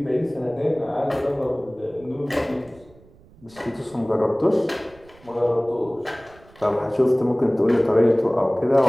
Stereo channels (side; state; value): right; noise; rumble, 26 dB below the sound